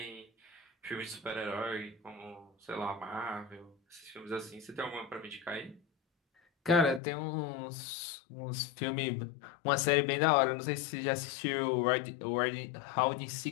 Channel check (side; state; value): right; drops out; at 7.0 s